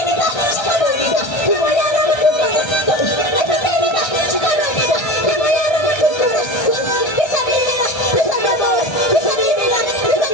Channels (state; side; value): late; right; 1.3 ms